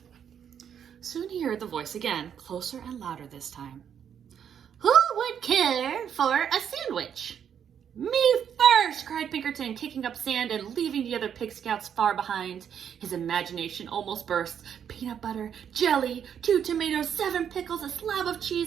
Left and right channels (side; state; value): left; quieter; 8.5 dB